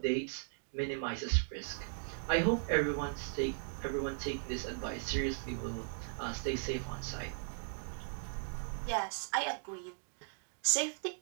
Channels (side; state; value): left; silent; digital silence